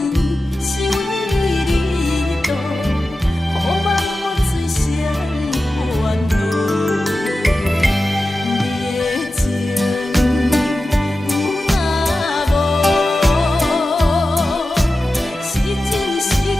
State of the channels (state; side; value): normal; both; correlation 0.93